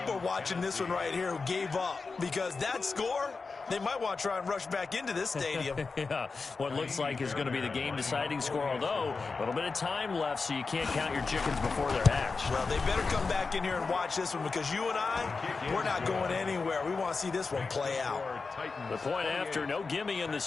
are watching this one right here who gave up? Because that score, they might want to try and rush back into this stadium. Yeah, what looks like is going to be the game-deciding score, although a little bit of time left, so you can't count your chickens before they're hatched. Well, they better come back in here and watch this one, because you and I, we're not going anywhere. We want to see this one play out. The point after, no gimme in the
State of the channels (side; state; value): right; quieter; 4.4 dB